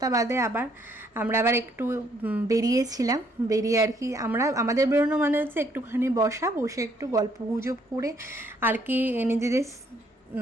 বাদে আমরা আবার একটু বেরিয়েছিলাম, বেরিয়ে আর কি আমাদের বেরোনো মানে হচ্ছে একটুখানি বসে একটু গল্প গুজব করে আর কি নিজেদের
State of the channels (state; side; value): normal; both; correlation 0.67